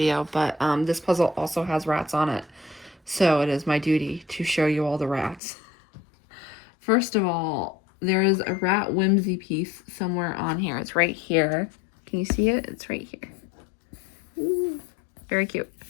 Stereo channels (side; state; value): right; drops out; at 5.4 s